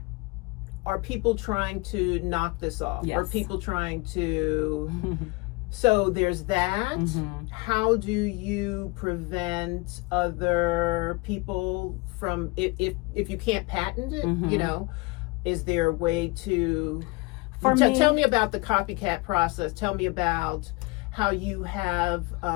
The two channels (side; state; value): right; quieter; 25.6 dB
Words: are people trying to knock this off? Yes. Are people trying to... So there's that. How do you prevent other people from, if you can't patent it, you know, is there a way to... Tell me about the copycat process. Tell me about how you have